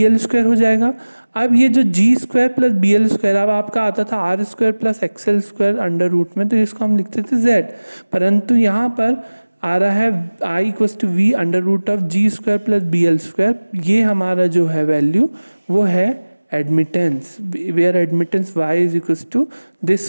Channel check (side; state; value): both; inverted; correlation -1.00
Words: square हो जाएगा। अब ये जो G square plus BL square अब आपका आता था R square plus XL square under root में, तो इसको हम लिखते थे Z, परंतु यहाँ पर आ रहा है I equals to V under root of G square plus BL square. ये हमारा जो है वैल्यू वो है admittance, where admittance Y is equals to